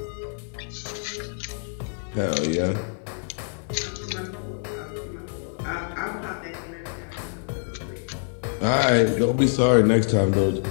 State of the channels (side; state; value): right; silent; 61 dB below the other